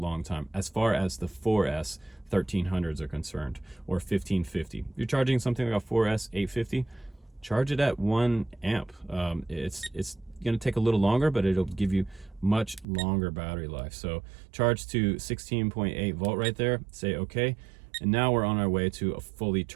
time as far as the 4S 1300s are concerned, or 1550. If you're charging something like a 4S 850, charge it at 1 amp. It's going to take a little longer, but it'll give you much longer battery life. So charge to 16.8 volt right there, say okay, and now we're on our way to a fully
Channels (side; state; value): left; drops out; at 12.9 s